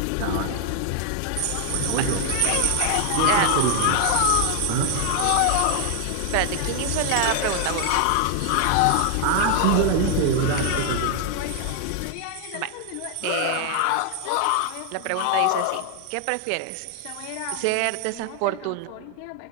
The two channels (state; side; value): different; both; correlation 0.00